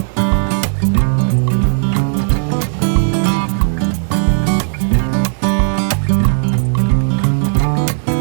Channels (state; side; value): silent; left; digital silence